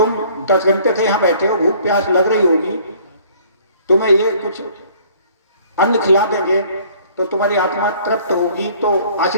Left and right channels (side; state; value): both; inverted; correlation -0.55